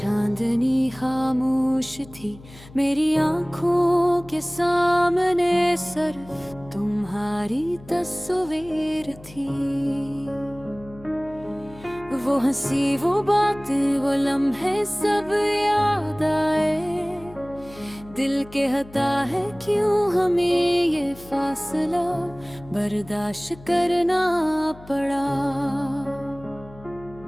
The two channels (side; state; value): left; noise; hum, 20 dB below the sound